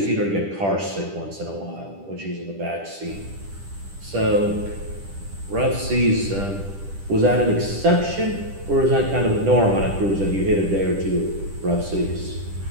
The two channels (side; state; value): left; late; 10 ms